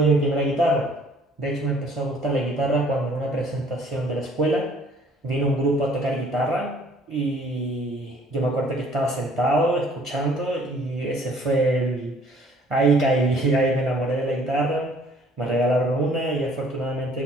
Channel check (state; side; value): normal; both; correlation 0.58